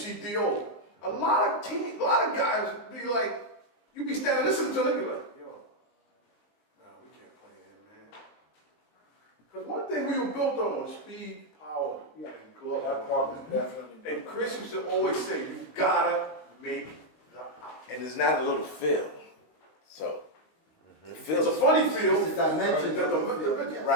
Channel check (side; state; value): right; late; 19 ms